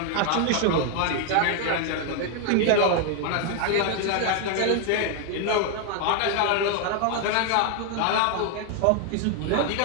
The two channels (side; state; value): both; different; correlation 0.00